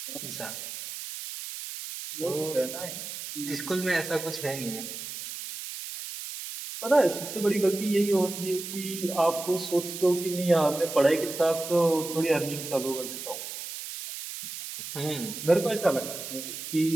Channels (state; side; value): noise; right; hiss, 8 dB below the sound